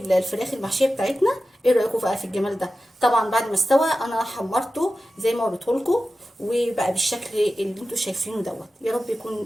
المحشيه بتاعتنا. ايه رايكم بقى في الجمال ده؟ طبعا بعد ما استوى انا حمرته زي ما وريته لكم، وبقى بالشكل اللي انتم شايفينه دوت. يا رب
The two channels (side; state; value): both; normal; correlation 0.93